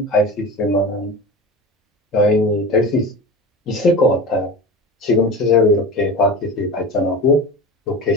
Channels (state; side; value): normal; both; correlation 0.31